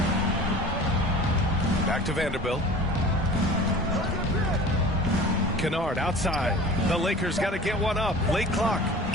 Back to Vanderbilt. Kennard outside. The Lakers got to get one up. Late clock.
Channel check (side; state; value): both; normal; correlation 0.41